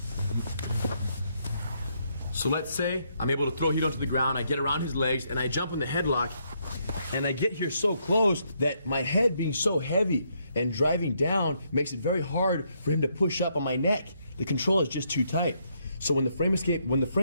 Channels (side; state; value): both; inverted; correlation -0.75